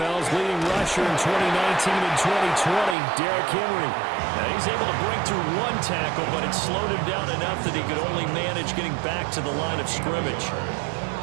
leading rusher in 2019 and 2020, Derrick Henry. Now he's able to break through one tackle, but it slowed him down enough that he could only manage getting back to the line of scrimmage.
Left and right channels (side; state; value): left; drops out; at 3.0 s